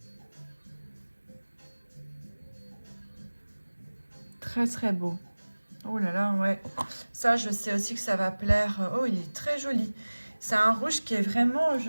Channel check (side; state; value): both; inverted; correlation -1.00